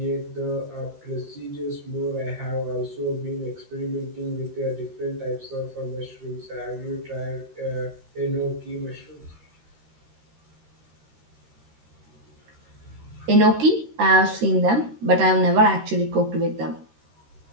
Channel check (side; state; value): left; late; 13 ms